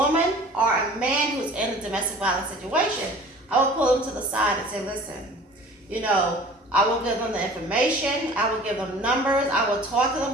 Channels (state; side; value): normal; both; correlation 0.45